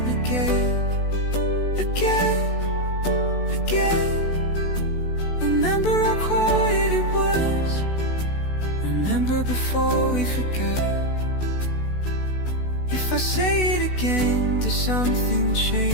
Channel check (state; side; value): late; right; 16 ms